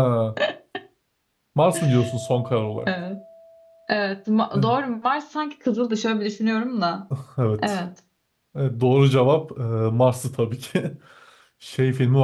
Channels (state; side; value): identical; both; correlation 1.00